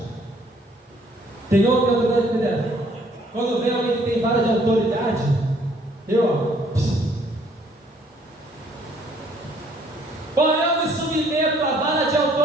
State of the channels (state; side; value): normal; both; correlation 0.63